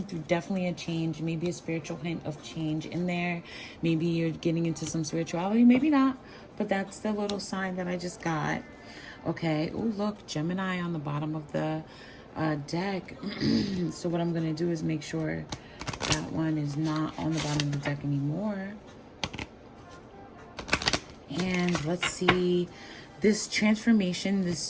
through definitely a change. Maybe a spiritual hint of change in there. Maybe you're getting into some spirituality. Maybe not. But that's the little sign that I just got. Okay. Oh, look, Gemini on the bottom of the deck. So what I'm going to do is make sure that one is not on the bottom of the deck anymore. And let's see. This transformation,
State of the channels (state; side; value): identical; both; correlation 1.00